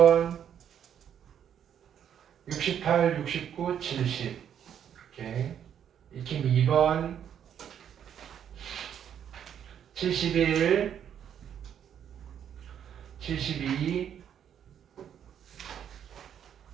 68, 69, 70 이렇게. 익힘 2번 71, 72,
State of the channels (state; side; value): quieter; left; 9.1 dB